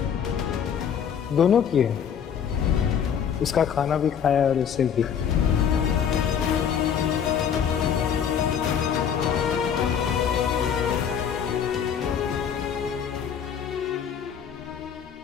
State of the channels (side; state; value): right; quieter; 8.0 dB